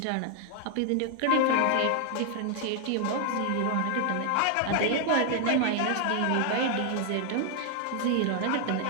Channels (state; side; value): different; both; correlation 0.00